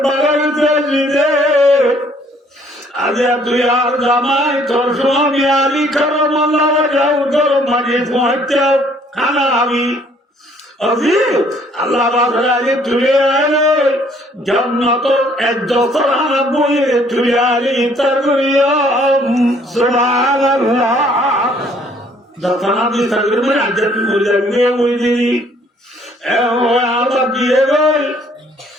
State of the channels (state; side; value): normal; both; correlation 0.62